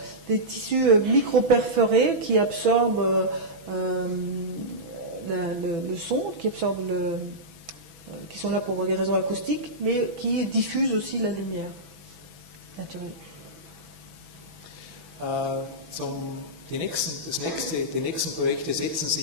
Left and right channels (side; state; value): left; late; 6.1 ms